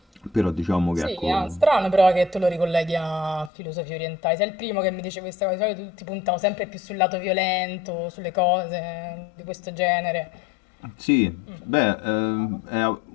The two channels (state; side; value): drops out; right; at 3.5 s